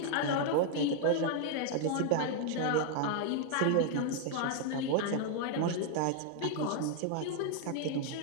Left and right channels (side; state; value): both; different; correlation 0.00